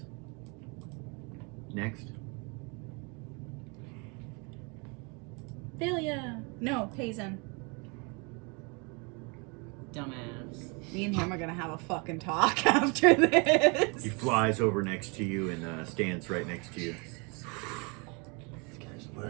Next. Delia. No, Hazen. Dumbass. Me and him are gonna have a fucking talk after this. He flies over next to you and stands right next to you. This guy's the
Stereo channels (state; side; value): quieter; left; 31.6 dB